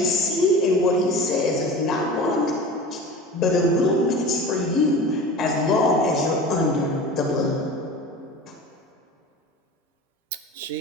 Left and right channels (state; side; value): normal; both; correlation 0.35